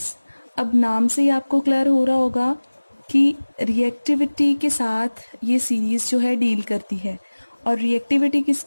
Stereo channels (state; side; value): inverted; both; correlation -1.00